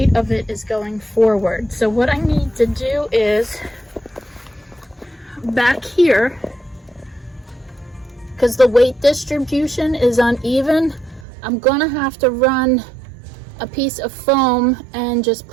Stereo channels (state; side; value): drops out; left; at 11.2 s